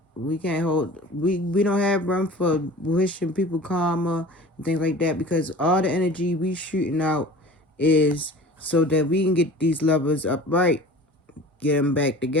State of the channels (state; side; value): normal; both; correlation 0.41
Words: We can't hold, we don't have room for wishing people karma and things like that, because all the energy we shooting out is so that we can get these lovers upright, get them back